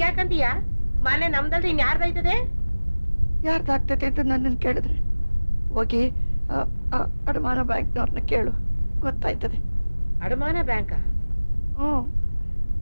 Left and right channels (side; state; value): both; inverted; correlation -1.00